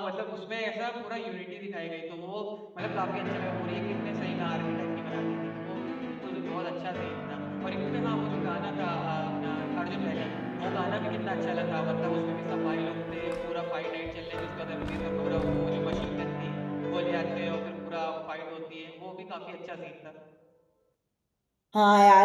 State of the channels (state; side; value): identical; both; correlation 1.00